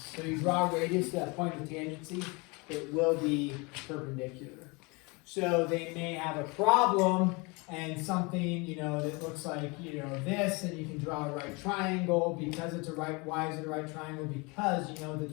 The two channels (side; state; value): right; quieter; 28.1 dB